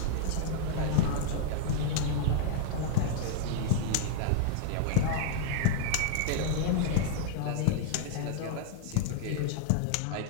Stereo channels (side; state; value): both; different; correlation -0.01